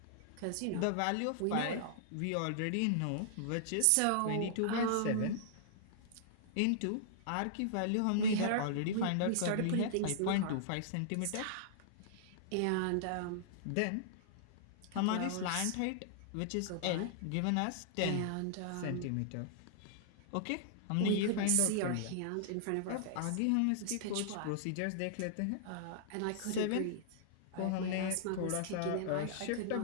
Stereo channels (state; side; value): different; both; correlation -0.01